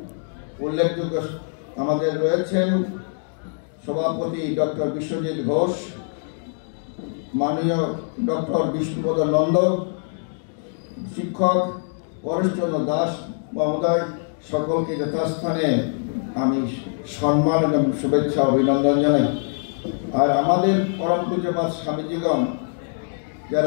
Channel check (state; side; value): silent; right; digital silence